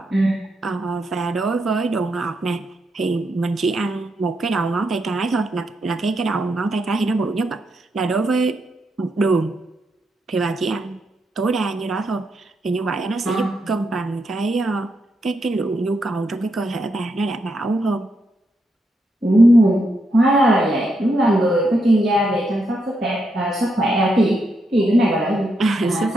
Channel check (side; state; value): both; normal; correlation 0.81